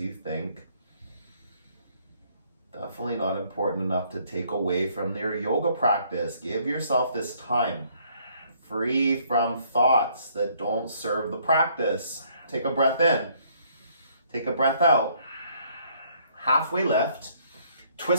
think. Definitely not important enough to take away from your yoga practice. Give yourself this time, free from thoughts that don't serve the practice. Take a breath in. Take a breath out. Halfway lift.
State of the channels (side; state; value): both; inverted; correlation -0.65